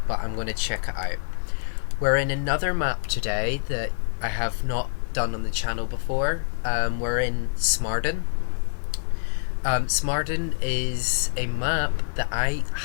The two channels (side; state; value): right; silent; digital silence